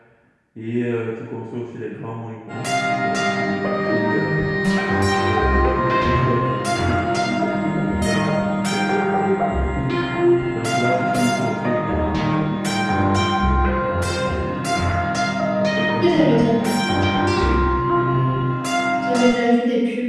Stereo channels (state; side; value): identical; both; correlation 1.00